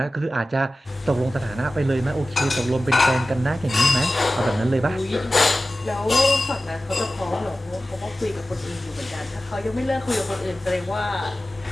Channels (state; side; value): normal; both; correlation 0.95